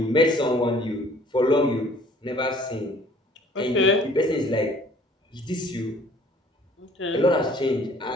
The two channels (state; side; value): normal; both; correlation 0.55